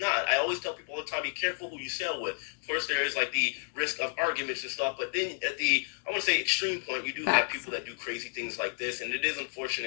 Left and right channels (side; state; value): right; silent; digital silence